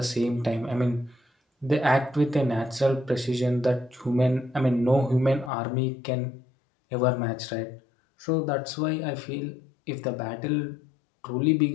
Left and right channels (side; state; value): right; drops out; at 5.5 s